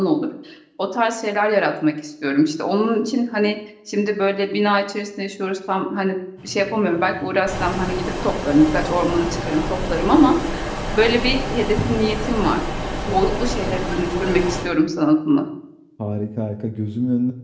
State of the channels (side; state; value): both; identical; correlation 1.00